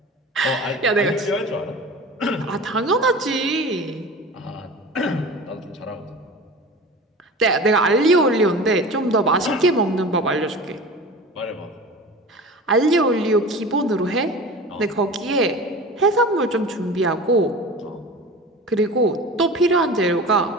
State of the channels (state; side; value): normal; both; correlation 0.35